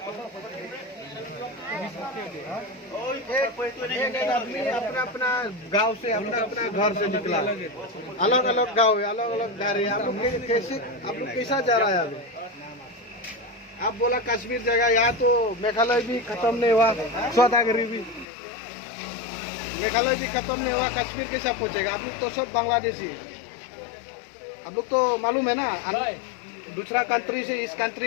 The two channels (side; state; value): right; drops out; at 18.2 s